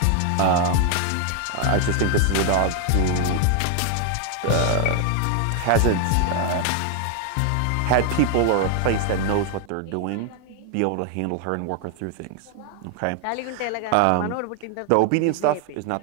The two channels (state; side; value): different; both; correlation 0.00